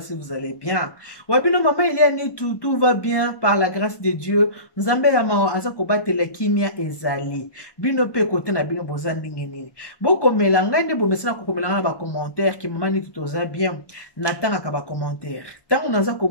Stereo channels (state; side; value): late; right; 1.2 ms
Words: si vous allez bien. Wabino mama ile anitu, tout va bien par la grâce de Dieu. Nzambe ya mao aza kobatela kimia ezali. Bino pe kote na bino boza ndenge nini. Boko melanga nde bomesana kokomelanga na ba commentaire ki mama nitu toza bien. Natanga ka ba commentaire. Tango naza